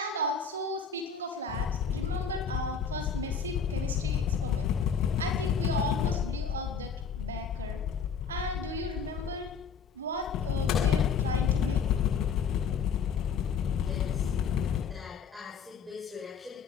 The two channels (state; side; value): quieter; right; 6.1 dB